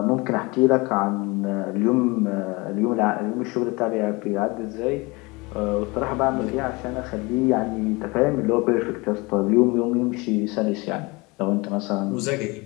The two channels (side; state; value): right; quieter; 25.3 dB